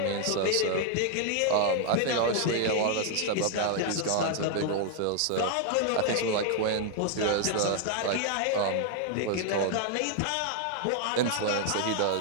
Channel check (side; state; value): both; different; correlation 0.00